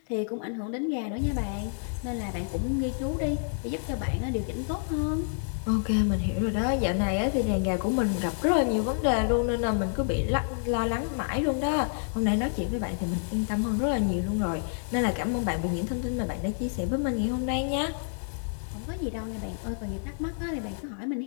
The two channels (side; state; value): right; silent; digital silence